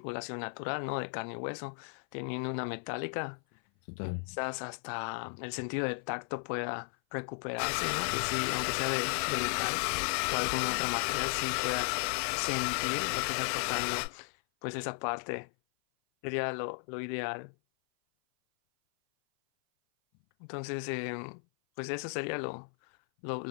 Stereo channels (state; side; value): silent; right; 54 dB below the other